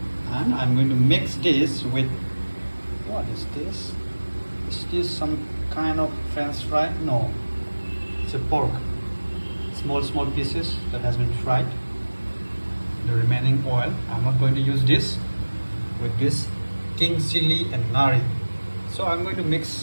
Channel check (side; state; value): both; inverted; correlation -1.00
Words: and I'm going to mix this with what is this? Is this some kind of French fry? No, it's a pork. Small pieces that has been fried. The remaining oil. I'm not going to use this with this king chili and nari. So I'm going to